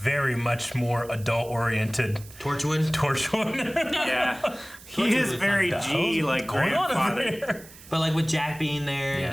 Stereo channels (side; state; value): right; noise; hiss, 20 dB below the sound